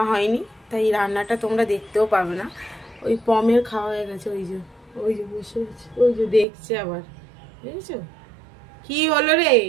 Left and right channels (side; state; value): left; drops out; at 6.5 s